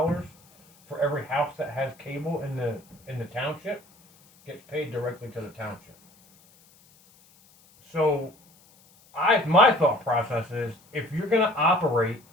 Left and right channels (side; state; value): left; noise; hiss, 29 dB below the sound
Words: for every house that has cable in the township. Gets paid directly to the township. So my thought process is, if you're gonna operate